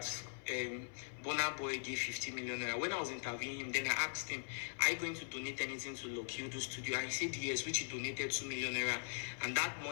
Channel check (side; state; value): right; silent; 50 dB below the other